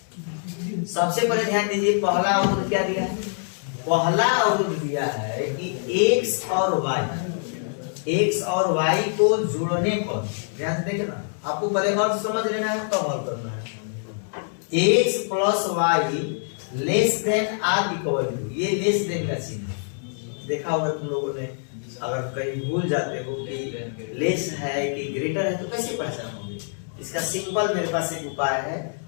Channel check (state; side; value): silent; right; digital silence